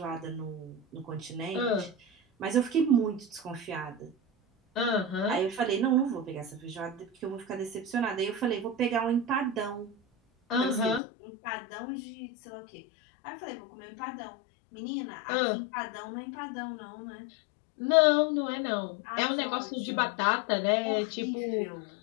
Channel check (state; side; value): drops out; right; at 11.0 s